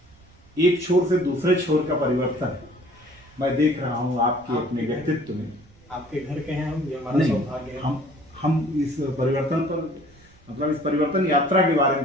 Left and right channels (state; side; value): noise; right; rumble, 27 dB below the sound